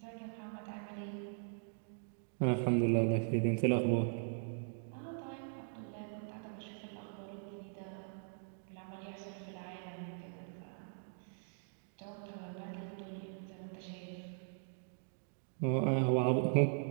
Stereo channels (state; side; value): silent; left; digital silence